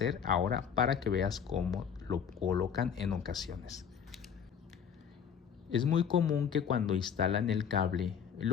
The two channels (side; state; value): right; quieter; 7.6 dB